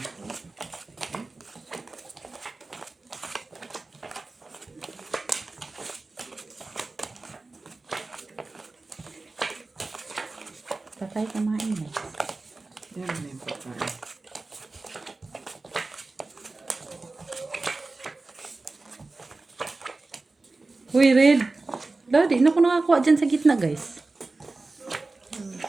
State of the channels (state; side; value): quieter; left; 3.4 dB